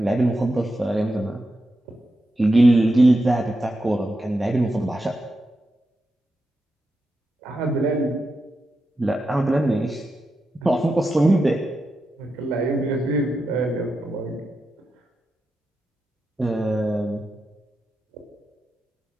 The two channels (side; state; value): both; normal; correlation 0.88